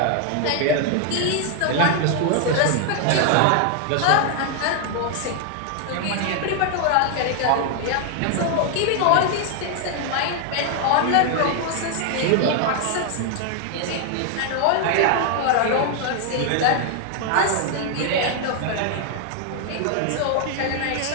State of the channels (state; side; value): different; both; correlation 0.00